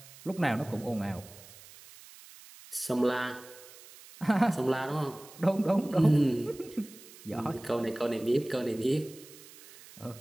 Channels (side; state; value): right; noise; hiss, 20 dB below the sound